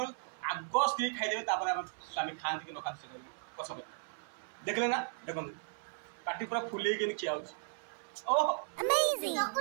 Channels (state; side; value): silent; left; 54 dB below the other